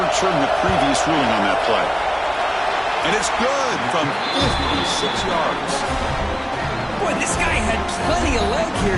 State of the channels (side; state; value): both; identical; correlation 1.00